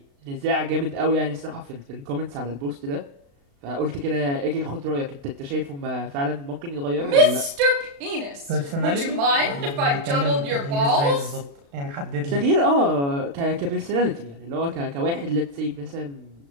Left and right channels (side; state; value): left; late; 36 ms